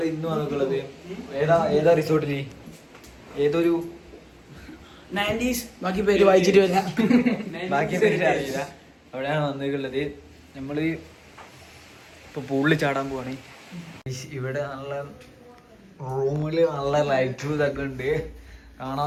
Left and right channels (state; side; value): identical; both; correlation 1.00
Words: ഇന്ന് വന്നിട്ടുള്ളത് ഏതാ റിസോർട്ടില് ഏതൊരു 90s ബാക്കി പേര് വായിച്ചിട്ട് വരാം. ബാക്കി പേര് അറിയില്ല. അവിടെയാണ് വന്നിട്ടുള്ളത്. നമ്മള് ഇപ്പൊ പൂളിൽ ചാടാൻ പോവാണ്. ഇവിടെ നല്ല റൂമില് നല്ല ലൈറ്റും ഇതൊക്കെ ഉണ്ട്,